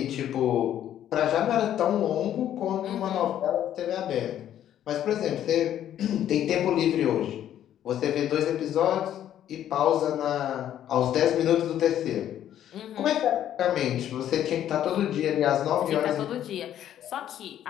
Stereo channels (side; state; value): right; quieter; 11.1 dB